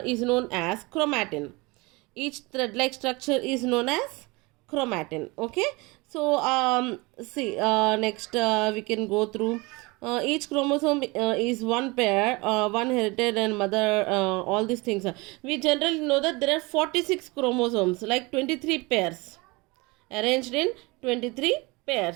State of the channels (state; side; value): quieter; left; 25.2 dB